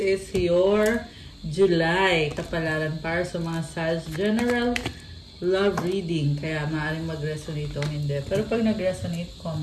is your July kapalaran para sa mga Sag general love reading. Kaya maaaring mag-resonate o hindi. Pero pag nag-resonate,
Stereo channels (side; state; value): both; identical; correlation 1.00